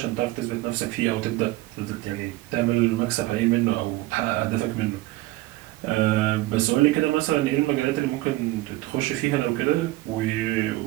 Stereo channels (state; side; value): quieter; left; 18.2 dB